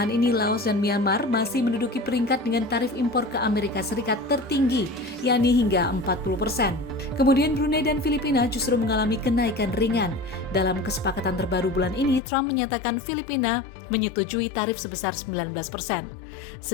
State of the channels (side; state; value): right; drops out; at 12.2 s